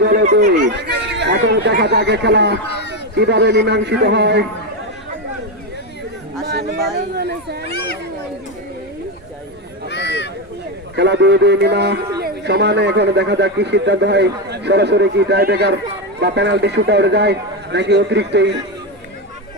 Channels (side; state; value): both; normal; correlation 0.11